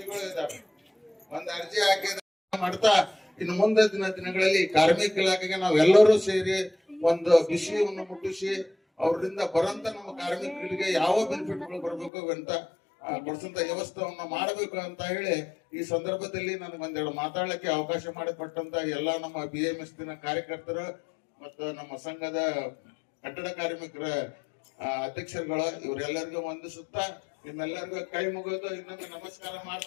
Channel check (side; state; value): right; drops out; at 12.1 s